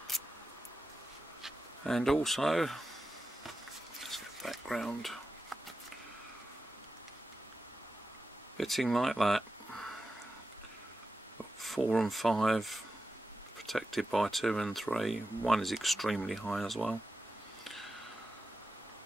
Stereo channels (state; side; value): normal; both; correlation 0.91